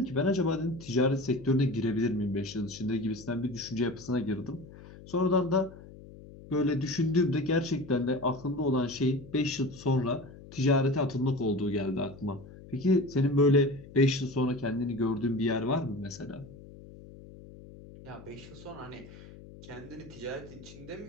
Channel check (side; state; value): left; noise; hum, 18 dB below the sound